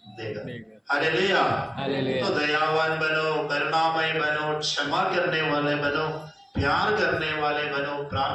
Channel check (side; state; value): both; identical; correlation 1.00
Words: देगा। हालेलुया। हालेलुया। तो दयावान बनो, करुणामय बनो, क्षमा करने वाले बनो, प्यार करने वाले बनो,